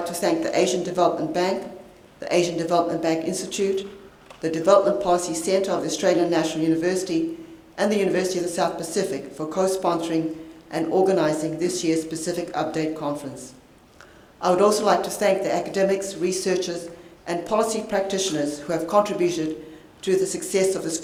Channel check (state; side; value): identical; both; correlation 1.00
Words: to thank the Asian Development Bank, the Asian Development Bank Institute, the Development Policy Centre of the Australian National University, and the University of the South Pacific for co-sponsoring and organising this year's Pacific Update Conference. I would also like to thank the academics, researchers, and policy practitioners who have contributed to the success of this